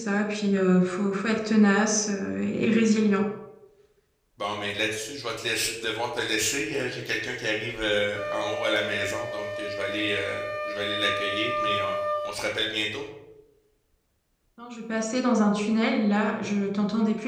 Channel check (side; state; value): both; identical; correlation 1.00